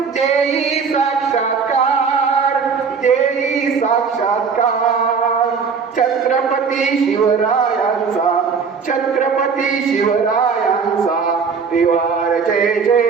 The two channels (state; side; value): quieter; left; 5.7 dB